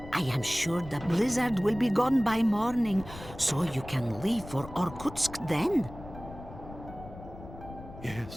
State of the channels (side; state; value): left; noise; rumble, 15 dB below the sound